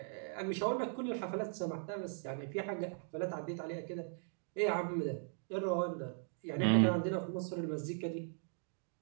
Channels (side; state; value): left; silent; 52 dB below the other